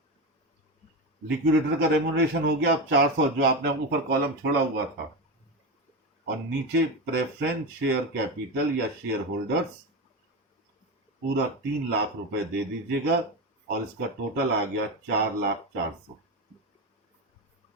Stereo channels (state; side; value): normal; both; correlation 0.17